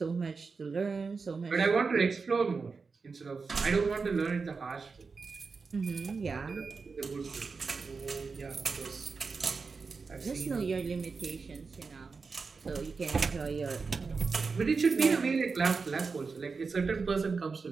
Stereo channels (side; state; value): left; quieter; 4.7 dB